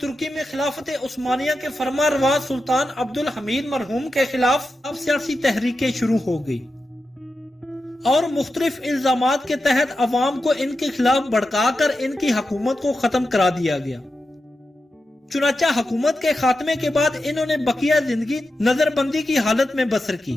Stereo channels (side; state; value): both; normal; correlation 0.90